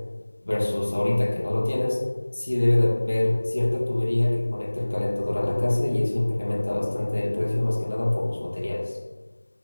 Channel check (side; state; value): both; inverted; correlation -1.00